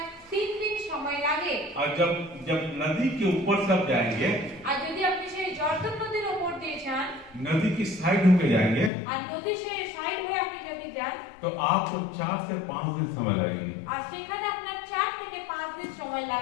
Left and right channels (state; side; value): drops out; right; at 8.9 s